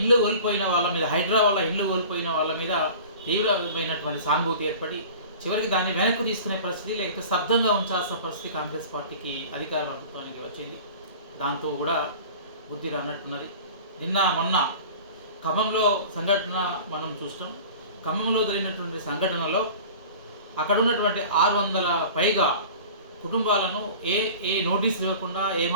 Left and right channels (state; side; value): inverted; both; correlation -0.40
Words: కోల్పోయిన వాళ్ళ మీద, హైడ్రా వల్ల ఇల్లు కోల్పోయిన వాళ్ళ మీద తీవ్రమైనటువంటి సానుభూతి ఏర్పడి చివరికి దాన్ని వెనక్కి తీసుకునే పరిస్థితి, లేకపోతే స్తబ్దంగా ఉంచాల్సిన పరిస్థితి కాంగ్రెస్ పార్టీకి, అధికార ప్రభుత్వానికి వచ్చింది. దాంతో కూడా బుద్ధి రానట్టున్నది. నిన్న మొన్న ఖమ్మంలో సంఘటన మనం చూస్తాం. ఖమ్మంలో జరిగినటువంటి సంఘటనలో అక్కడ ఉన్నటువంటి 600 పైగా కుటుంబాలను ఏ నోటీస్ ఇవ్వకుండా,